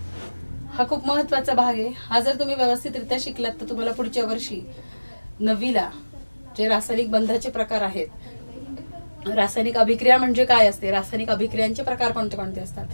हा खूप महत्वाचा भाग आहे. हा जर तुम्ही व्यवस्थितरित्या शिकलात तर तुम्हाला पुढच्या वर्षी 9वीला जे रासायनिक बंधाचे प्रकार आहेत, रासायनिक अभिक्रिया म्हणजे काय असते, रासायनिक अभिक्रियांचे प्रकार कोणते कोणते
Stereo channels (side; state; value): both; inverted; correlation -1.00